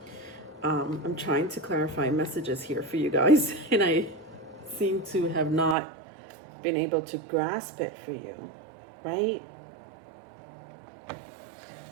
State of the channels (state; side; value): drops out; left; at 5.8 s